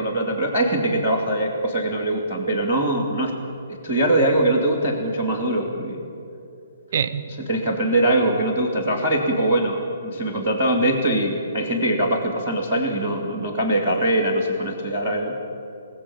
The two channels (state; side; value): inverted; both; correlation -0.56